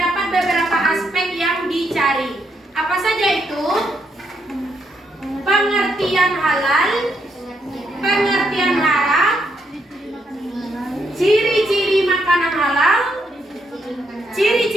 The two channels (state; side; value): normal; both; correlation 0.77